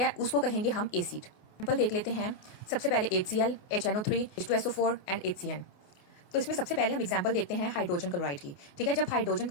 उसको कहेंगे हम एसिड। एग्जाम्पल देख लेते हैं। सबसे पहले HCl, HNO3, H2SO4 and HCN। तो इसमें सबसे पहले हम एग्जांपल देखते हैं हाइड्रोजन क्लोराइड की। ठीक है, जब हाइड्रोजन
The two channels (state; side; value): late; right; 28 ms